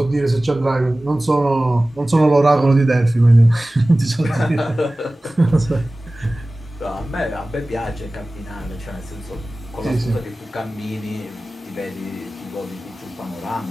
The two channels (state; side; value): normal; both; correlation 0.97